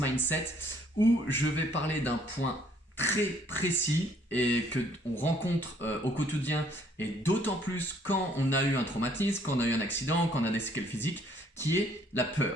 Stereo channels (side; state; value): both; normal; correlation 0.63